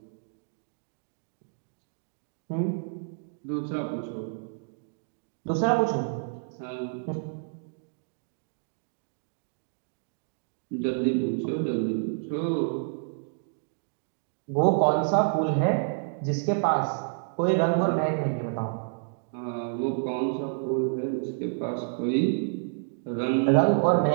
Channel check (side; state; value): left; silent; digital silence